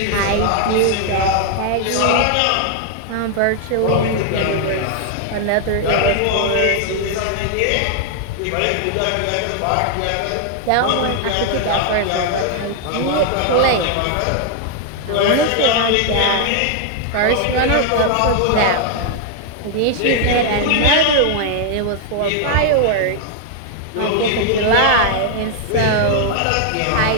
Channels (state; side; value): different; both; correlation 0.00